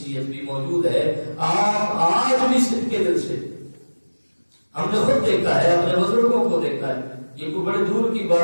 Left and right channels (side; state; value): both; inverted; correlation -1.00